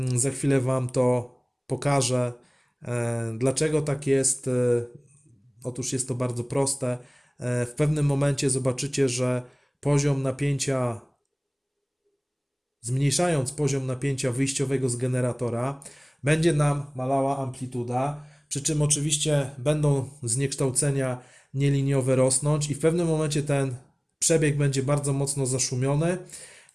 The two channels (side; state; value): both; identical; correlation 1.00